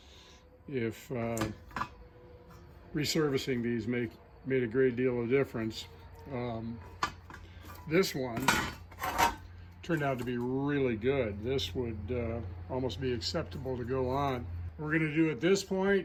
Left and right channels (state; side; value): identical; both; correlation 1.00